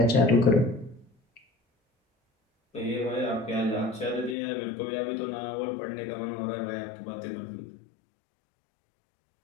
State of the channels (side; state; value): right; drops out; at 4.4 s